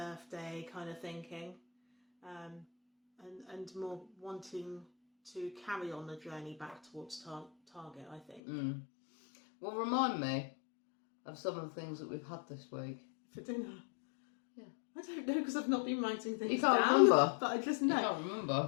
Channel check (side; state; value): right; drops out; at 8.4 s